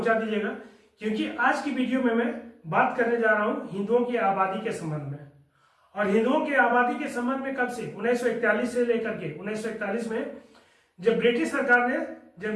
दीजिएगा, क्योंकि आज की वीडियो में मैं बात करने जा रहा हूं हिंदुओं की आबादी के संबंध में। और हिंदुओं की आबादी के संबंध में कब से, 1941 से लेकर के 1941 में जब ब्रिटिश सरकार ने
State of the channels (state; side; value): identical; both; correlation 1.00